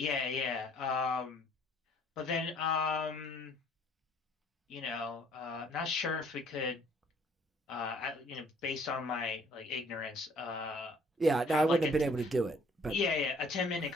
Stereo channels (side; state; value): both; normal; correlation 0.59